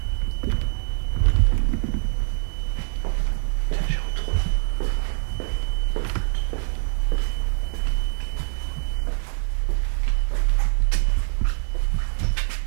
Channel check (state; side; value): silent; left; 63 dB below the other